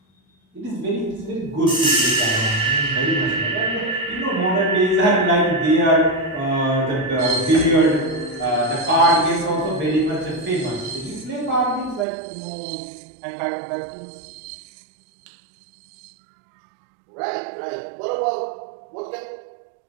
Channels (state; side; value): drops out; left; at 12.1 s